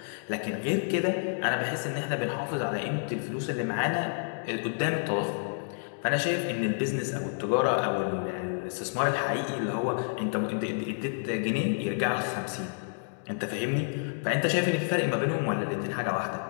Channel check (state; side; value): silent; right; digital silence